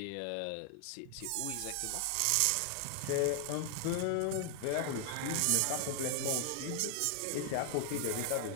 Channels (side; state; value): both; different; correlation 0.00